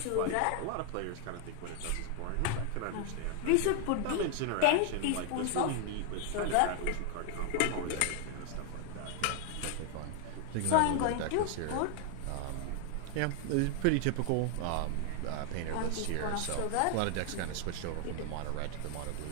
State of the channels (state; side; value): different; both; correlation 0.00